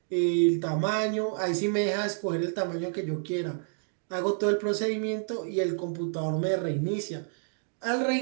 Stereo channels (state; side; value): silent; left; digital silence